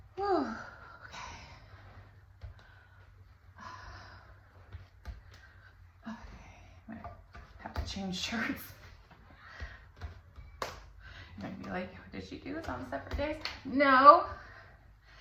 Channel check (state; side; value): identical; both; correlation 1.00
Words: Whew. Okay. Okay. I might have to change shirts. You're gonna be like, did she do this on separate days? No.